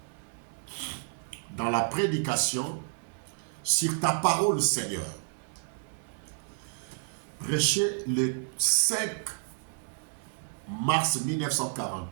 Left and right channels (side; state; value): left; silent; 57 dB below the other